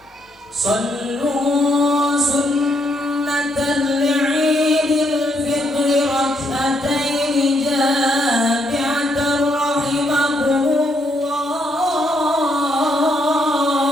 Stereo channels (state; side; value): normal; both; correlation 0.75